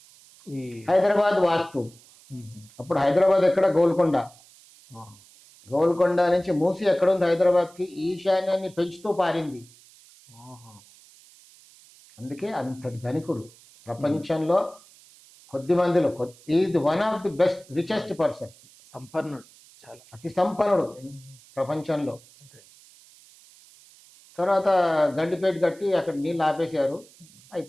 ఈ హైదరాబాద్ వాస్తు. అప్పుడు హైదరాబాద్ ఎక్కడ? గోల్కొండ. గోల్కొండ నుంచి మూసి ఎక్కడుంది హైదరాబాద్కి? ఈశాన్యాన్ని పెంచుతూ పారింది. అందుకే అంతటి ధనికుడు. ప్రపంచంలో కొద్ది మందిలో is one of the best richest person, సంపన్నుడు, చాలా అతి సంపన్నుడు ప్రపంచంలో. అదే. తర్వాత గండిపేట కట్టి అక్కడ నీళ్ళు ఆపేశారు,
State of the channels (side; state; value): right; noise; hiss, 25 dB below the sound